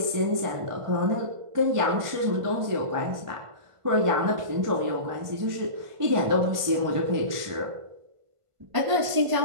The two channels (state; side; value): late; left; 1.5 ms